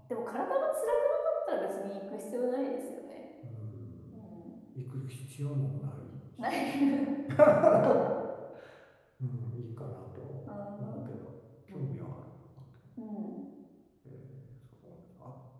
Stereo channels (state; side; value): identical; both; correlation 1.00